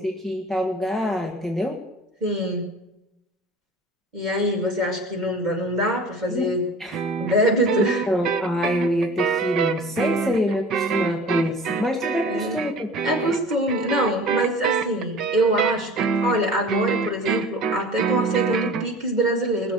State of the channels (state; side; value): normal; both; correlation 0.41